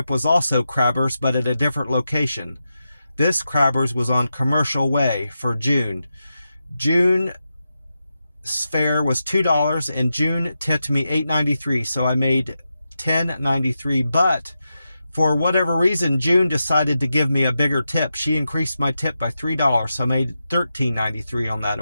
was also Crabber's, but at a different location. This Crabber's was on Commercial Way for June. June's fare was $2, and June tipped me $8.93, so I made $10.93. But for whatever reason, June decided to give me a bigger tip. She increased my tip by $3, so I made $13.93 on that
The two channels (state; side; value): inverted; both; correlation -0.89